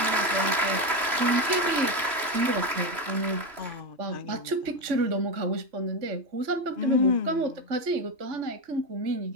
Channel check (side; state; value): left; late; 3.0 ms